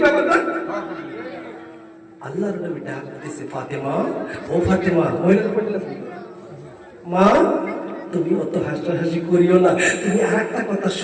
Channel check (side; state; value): both; identical; correlation 1.00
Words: ব্যাপারটা। আল্লাহর নবী ডাক দিতেছে, ফাতেমা, ও ফাতেমা, মা তুমি অত হাসাহাসি করিও না, তুমি আর একটা কথা